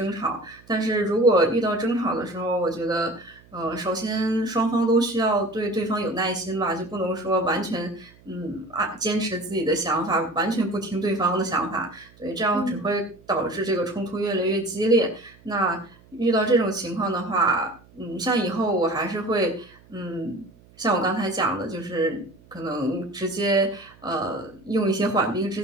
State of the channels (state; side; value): noise; right; hum, 26 dB below the sound